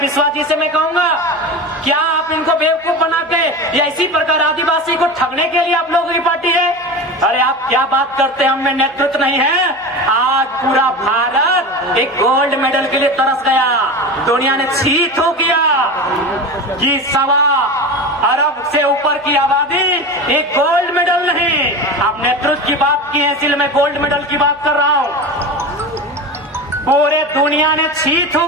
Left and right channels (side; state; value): both; normal; correlation 0.27